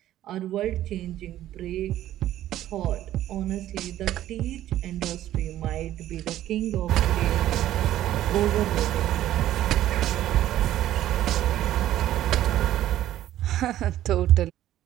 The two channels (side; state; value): left; quieter; 13.1 dB